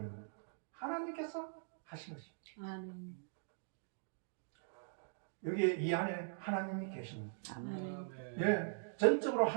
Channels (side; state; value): left; silent; digital silence